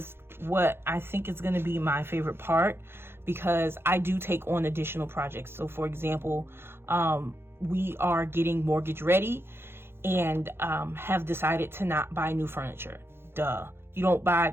what I think is going to be my favorite part, because I do take on additional projects. So for example, we are getting mortgage ready and have decided to not buy new furniture. Duh. You don't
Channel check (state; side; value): late; left; 0.11 ms